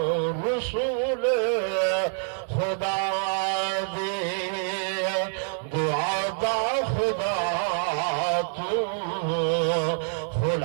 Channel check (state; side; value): silent; left; digital silence